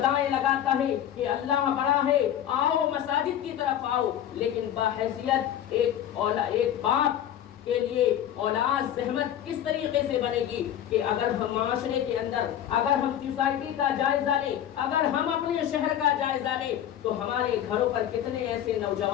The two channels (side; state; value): right; quieter; 10.7 dB